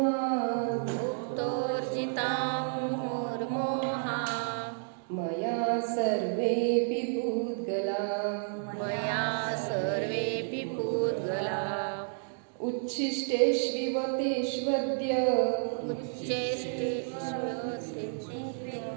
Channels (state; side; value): silent; left; digital silence